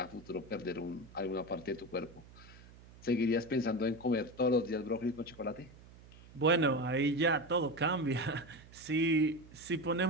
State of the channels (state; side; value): noise; right; hum, 21 dB below the sound